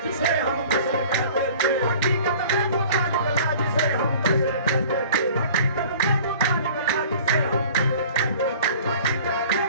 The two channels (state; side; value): inverted; both; correlation -0.46